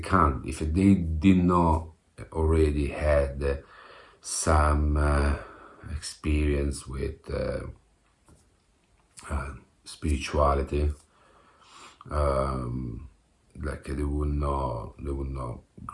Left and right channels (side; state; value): both; identical; correlation 1.00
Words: If they did not already had some experience with spirituality, like they would not